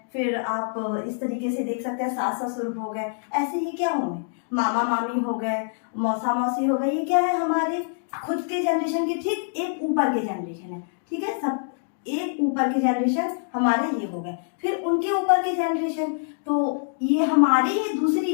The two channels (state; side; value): silent; right; digital silence